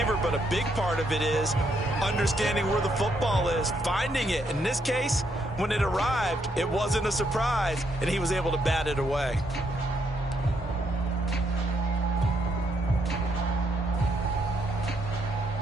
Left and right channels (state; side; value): normal; both; correlation 0.75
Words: but a big part of it is understanding where the football is, finding it. In this case, when it arrived, it wasn't a surprise, and he was able to bat it away.